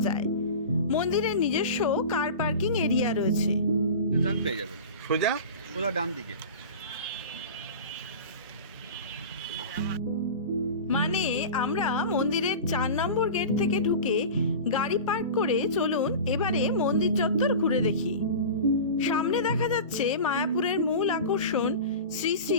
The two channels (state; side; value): inverted; both; correlation -0.32